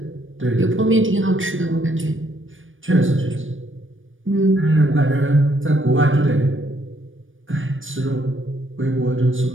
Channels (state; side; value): late; left; 0.57 ms